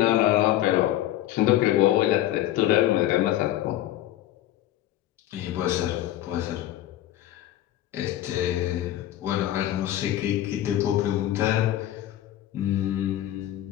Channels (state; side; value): quieter; right; 13.5 dB